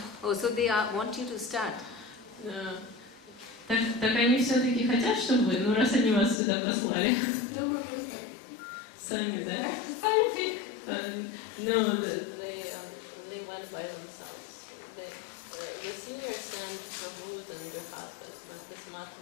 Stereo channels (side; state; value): right; drops out; at 6.4 s